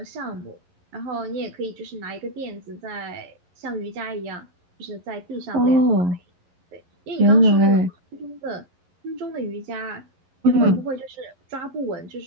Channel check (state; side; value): late; left; 11 ms